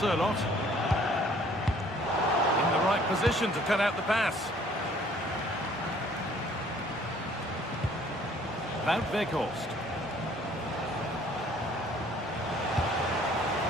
in the right position to cut out the pass. Wout Weghorst.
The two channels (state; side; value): normal; both; correlation 0.58